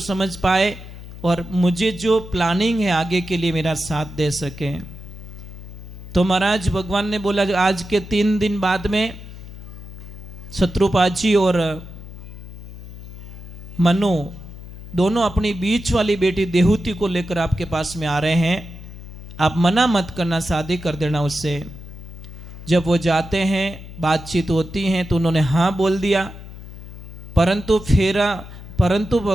पाए और मुझे जो प्लानिंग है आगे के लिए मेरा साथ दे सके। तो महाराज भगवान ने बोला आज के 3 दिन बाद में शत्रुपाद जी और मनु दोनों अपनी बीच वाली बेटी देहुति को लेकर आपके पास में आ रहे हैं, आप मना मत करना, शादी कर देना उससे। जब वो जाते हैं, बातचीत होती हैं, तो उन्होंने हाँ बोल दिया, परंतु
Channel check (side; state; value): left; noise; hum, 14 dB below the sound